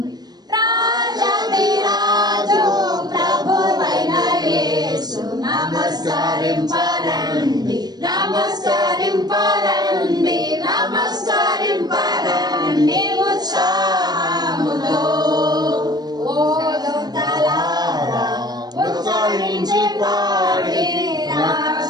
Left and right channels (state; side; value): late; left; 0.19 ms